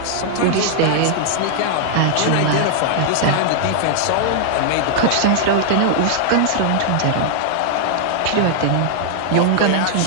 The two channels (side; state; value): both; different; correlation -0.01